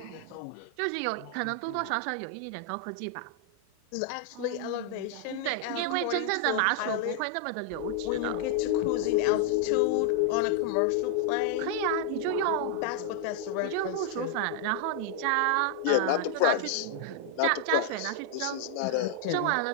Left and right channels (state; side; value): different; both; correlation 0.00